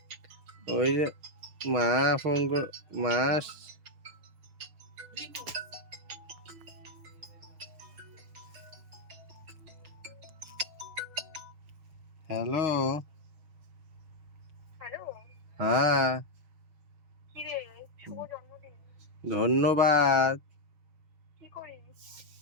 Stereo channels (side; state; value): left; late; 6.4 ms